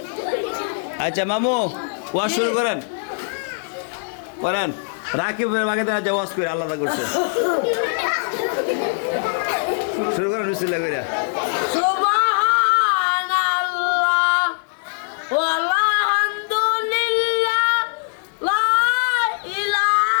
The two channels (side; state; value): right; silent; digital silence